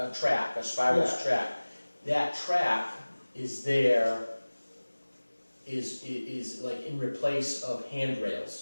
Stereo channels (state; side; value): inverted; both; correlation -1.00